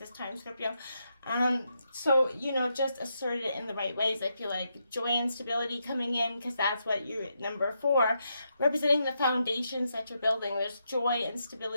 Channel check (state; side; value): inverted; both; correlation -0.82